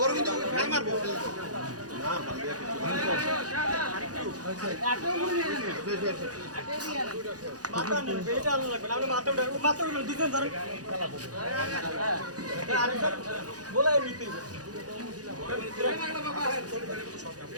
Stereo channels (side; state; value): left; late; 0.68 ms